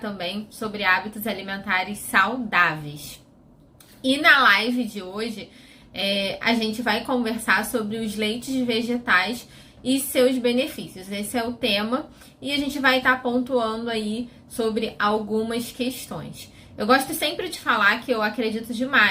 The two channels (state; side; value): identical; both; correlation 1.00